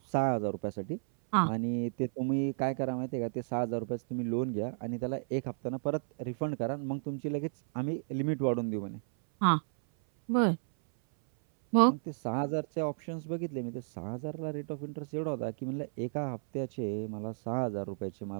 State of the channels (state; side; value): silent; left; 56 dB below the other